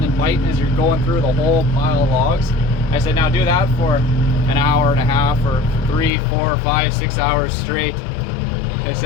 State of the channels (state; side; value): drops out; right; at 6.1 s